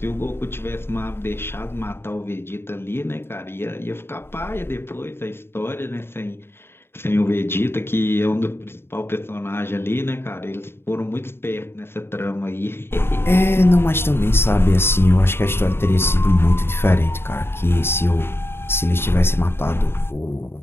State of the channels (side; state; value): right; late; 0.11 ms